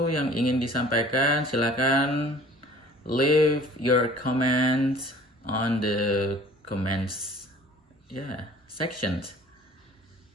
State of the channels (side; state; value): both; normal; correlation 0.50